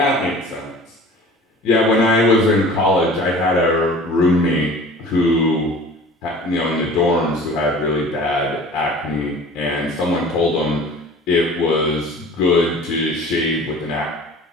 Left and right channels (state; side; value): normal; both; correlation 0.44